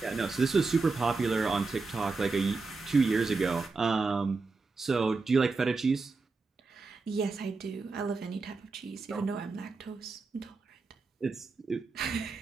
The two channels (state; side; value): quieter; left; 4.1 dB